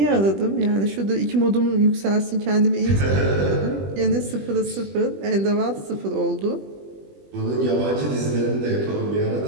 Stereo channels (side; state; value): left; late; 21 ms